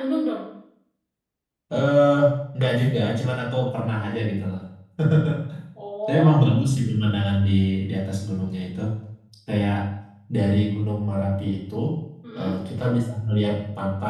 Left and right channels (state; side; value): identical; both; correlation 1.00